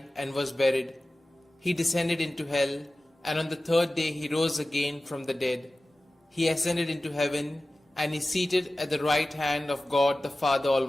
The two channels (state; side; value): normal; both; correlation 0.96